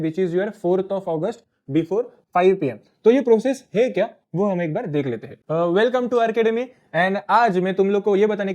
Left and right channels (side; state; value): both; identical; correlation 1.00